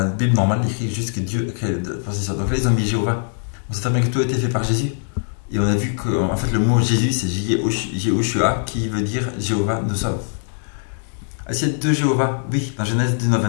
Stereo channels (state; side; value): silent; right; digital silence